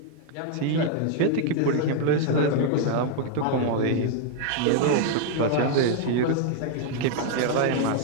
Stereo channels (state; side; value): different; both; correlation 0.00